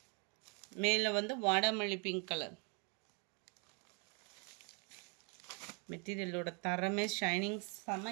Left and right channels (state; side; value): quieter; left; 35.3 dB